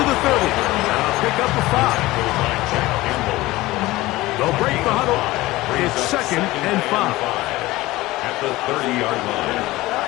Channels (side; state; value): right; quieter; 18.6 dB